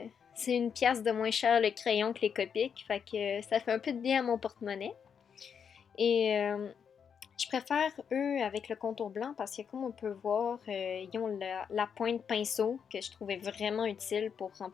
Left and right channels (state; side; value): quieter; right; 7.1 dB